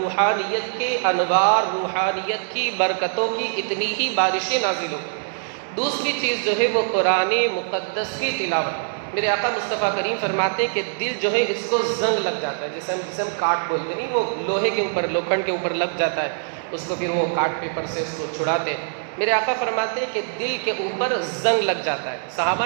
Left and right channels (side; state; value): left; silent; digital silence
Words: کے انوار، روحانیت کی برکتوں کی اتنی ہی بارشیں نازل ہوں۔ دوسری چیز جو ہے وہ قرآن مقدس کی تلاوت۔ میرے آقا مصطفیٰ کریم فرماتے ہیں کہ دل جو ہے اس کو زنگ لگ جاتا ہے، جسے ہم کاٹ بولتے نہیں، وہ لوہے کے اوپر، لوکھنڈ کے اوپر لگ جاتا ہے، اس کو پھر وہ کاٹ پیپر سے اس کو چھڑاتے ہیں۔ میرے آقا فرماتے ہیں کہ دل کے اوپر زنگ لگ جاتا ہے۔ صحابہ